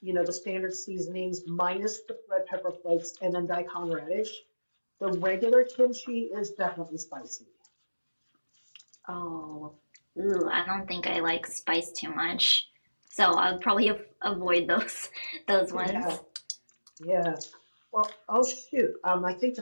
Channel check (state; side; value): inverted; both; correlation -1.00